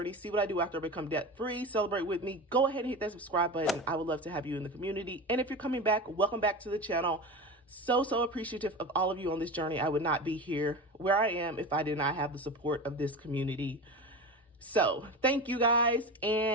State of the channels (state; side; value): normal; both; correlation 0.27